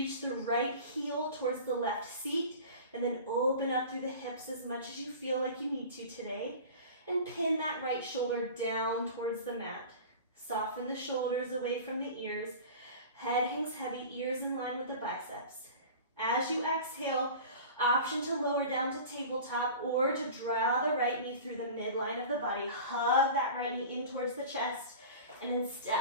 the right heel towards the left seat. And then open up through the hips as much as you feel like you need to today. And pin that right shoulder down towards the mat. Soften the shoulders away from the ears. Head hangs heavy, ears in line with the biceps. As you exhale, option to lower down to tabletop or to draw the right knee through the midline of the body. Hug that right knee in towards the chest. And then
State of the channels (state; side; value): inverted; both; correlation -0.37